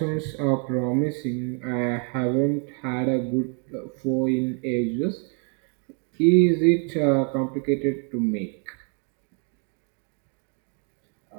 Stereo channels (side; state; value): left; quieter; 39.3 dB